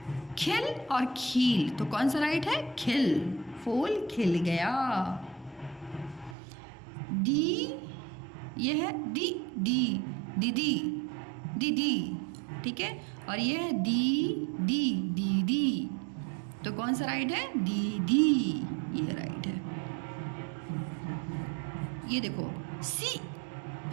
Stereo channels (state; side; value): drops out; left; at 6.4 s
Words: खिल और खील, तो कौन सा राइट है, खिल, फूल खिल गया। दी, यह है दी, दी, दीदी, दीदी, ठीक है, और यह है दी, दी, दीदी, तो कौन सा राइट है, दीदी, ये राइट है। ये देखो सी,